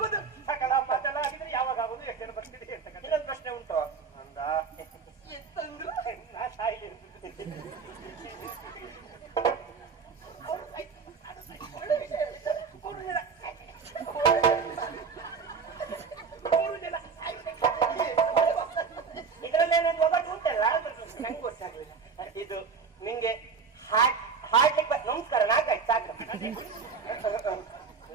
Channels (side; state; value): left; quieter; 5.5 dB